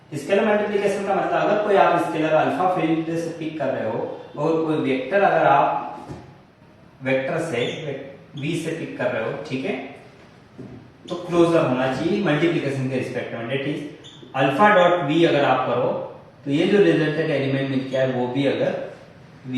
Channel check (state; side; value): identical; both; correlation 1.00